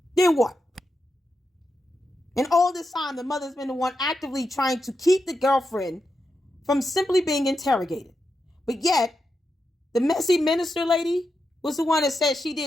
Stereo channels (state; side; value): normal; both; correlation 0.87